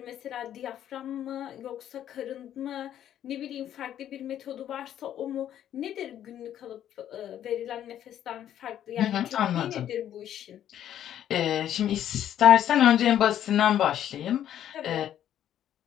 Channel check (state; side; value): quieter; right; 10.9 dB